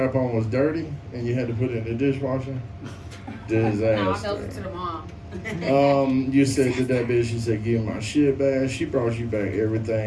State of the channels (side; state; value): both; identical; correlation 1.00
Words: was dirty and you had to put it in the dishwasher? No, I felt it Disaster. to the mom. You said to that bitch, you said, give my shit back. She brought you back